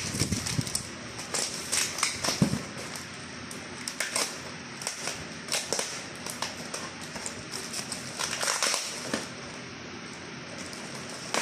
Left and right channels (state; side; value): identical; both; correlation 1.00